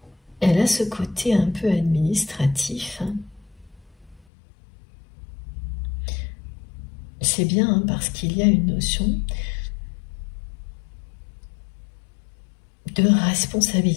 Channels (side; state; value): right; drops out; at 4.2 s